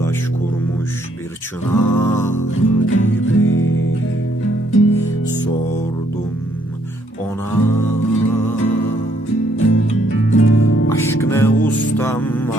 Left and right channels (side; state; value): both; normal; correlation 0.69